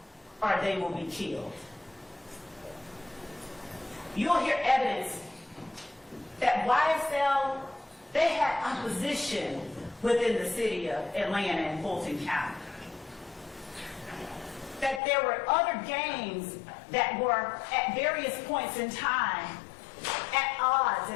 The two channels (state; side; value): drops out; right; at 15.0 s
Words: or they will be killed. You'll hear evidence that YSL, they had opposition within the city of Atlanta and Fulton County. that there were other gangs that were at various points in time at odds